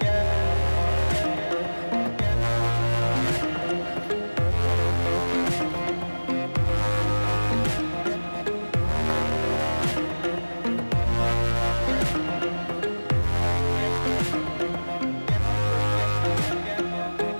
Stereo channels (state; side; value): inverted; both; correlation -1.00